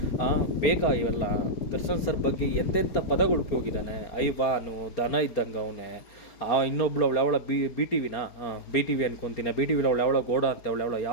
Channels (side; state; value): right; late; 4.3 ms